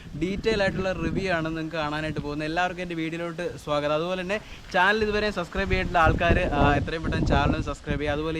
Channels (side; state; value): both; identical; correlation 1.00